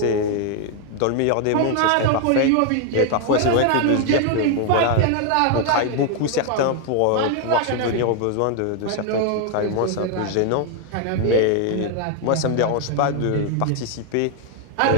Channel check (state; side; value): different; both; correlation 0.01